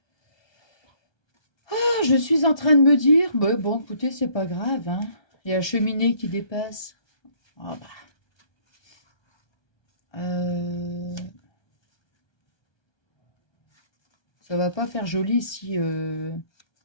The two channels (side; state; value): right; late; 1.2 ms